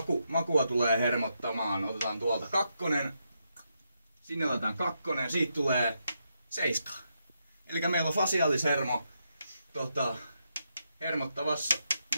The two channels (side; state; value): both; inverted; correlation -0.81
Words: makua tulee hermottamaan. Otetaan tuolta 2, sinne otetaan 2, siitä tulee 7. Eli meillä on fasiaalishermo